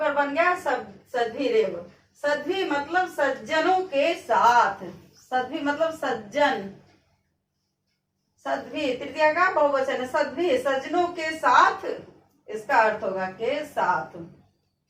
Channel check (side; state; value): both; identical; correlation 1.00